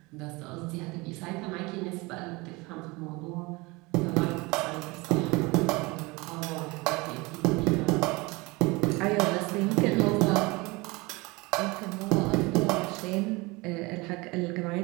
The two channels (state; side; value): quieter; left; 24.4 dB